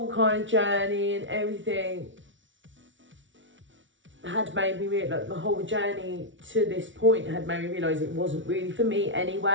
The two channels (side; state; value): left; late; 0.56 ms